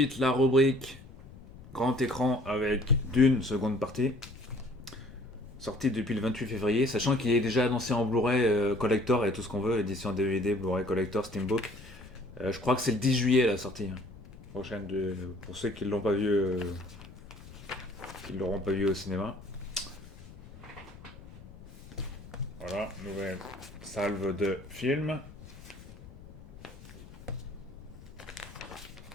la rubrique grand écran avec Dune, seconde partie. Sortie depuis le 28 février, sachant qu'il est déjà annoncé en Blu-ray collector et tout ce qu'on veut, édition DVD, Blu-ray collector, Steambook. Je crois que c'est le 10 juillet la sortie. Prochaine pour ceux qui ne l'ont pas vu, qui l'auront pas vu au cinéma. Voilà, nouvelle salve de films.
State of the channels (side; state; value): left; noise; rumble, 18 dB below the sound